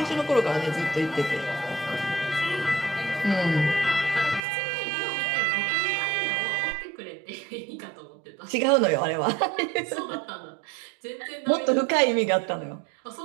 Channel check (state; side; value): drops out; left; at 4.4 s